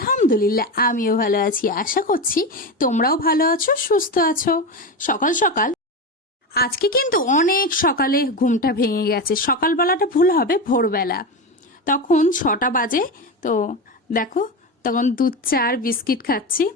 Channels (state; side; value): normal; both; correlation 0.19